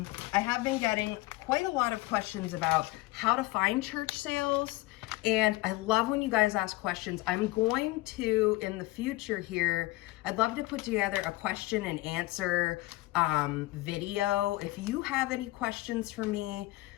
have been getting quite a lot of questions about how to find church sales. And I love when you guys ask questions. I'm going to, in the future here, I'd love to put together a question and answer video. If you have any questions for me,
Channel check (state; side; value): quieter; right; 19.9 dB